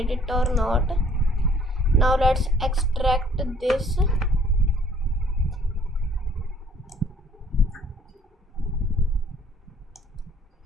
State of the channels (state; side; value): normal; both; correlation 0.59